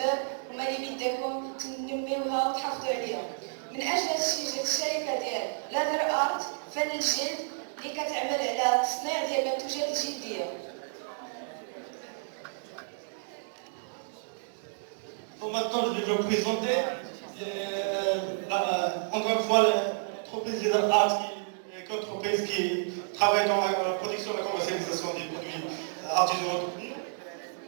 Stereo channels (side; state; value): left; silent; 57 dB below the other